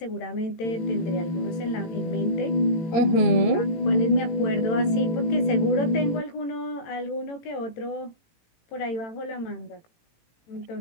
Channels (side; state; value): right; late; 18 ms